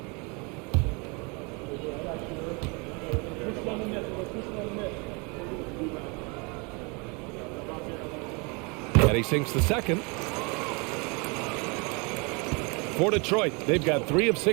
And he sinks the second. For Detroit, they've got 3 of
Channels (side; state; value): left; quieter; 30.6 dB